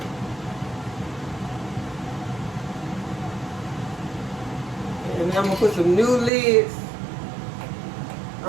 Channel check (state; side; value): drops out; left; at 6.3 s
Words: And now I'm going to put some new lids